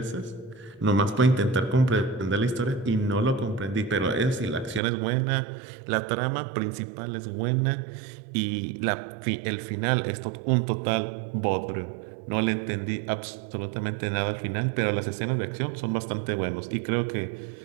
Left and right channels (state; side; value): drops out; left; at 4.8 s